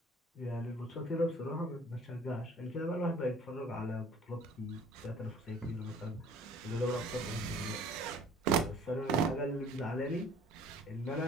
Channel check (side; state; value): both; normal; correlation 0.52